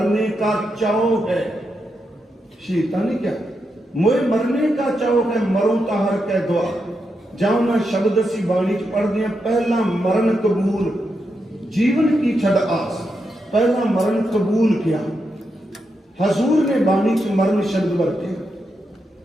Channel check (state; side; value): normal; both; correlation 0.85